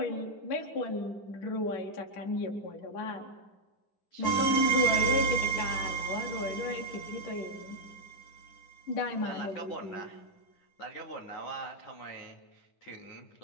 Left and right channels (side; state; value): right; late; 10 ms